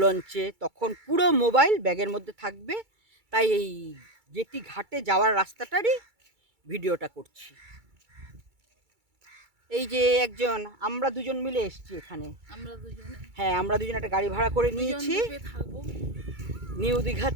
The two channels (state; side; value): late; left; 2.3 ms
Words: লঞ্চে, তখন পুরো মোবাইল ব্যাগের মধ্যে থাকবে। তাই এই জেটি ঘাটে যাওয়ার রাস্তাটারই ভিডিওটা করছি। এই যে একজন, আমরা দুজন মিলে এসেছি এখানে। হ্যাঁ, আমরা দুজন একটা গাড়ি ভাড়া করে নিয়েছি নিউ দীঘা